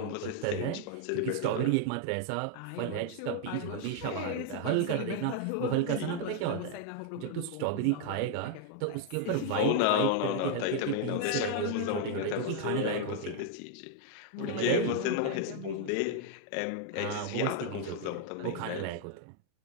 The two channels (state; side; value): different; both; correlation 0.00